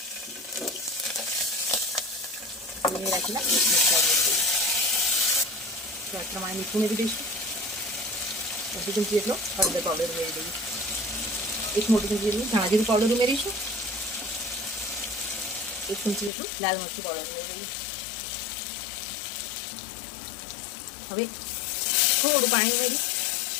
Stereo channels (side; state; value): right; drops out; at 16.3 s